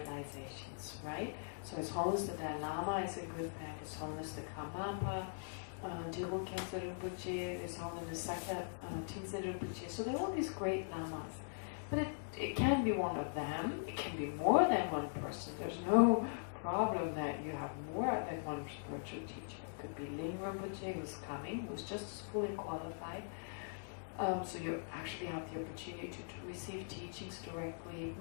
right? So His Holiness the Dalai Lama is a good bet, His Holiness the Karmapa, Geshe Kelsang Wangmo Refuge, His Holiness Sakya Tenzin Rinpoche. So there are all these great lamas. But it can be one of them, it can be more than one person. There's no problem that you have more than one spiritual teacher. It could be Ling Rinpoche, who's coming, who's just as fully qualified. So you actually have the opportunity to receive teachings directly,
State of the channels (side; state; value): right; silent; digital silence